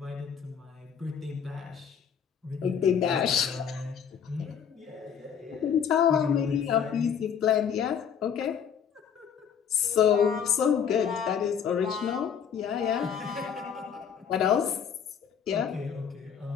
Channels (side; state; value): right; quieter; 7.6 dB